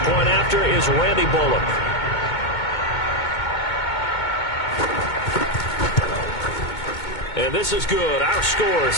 after is Randy Bullock. And this is good. Our score,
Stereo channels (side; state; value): right; late; 2.2 ms